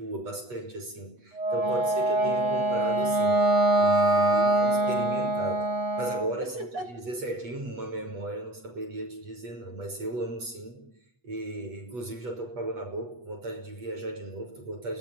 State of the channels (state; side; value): late; left; 8.2 ms